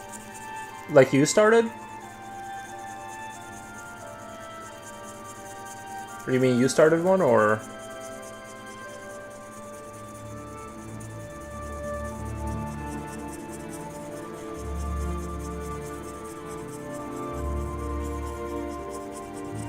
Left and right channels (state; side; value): identical; both; correlation 1.00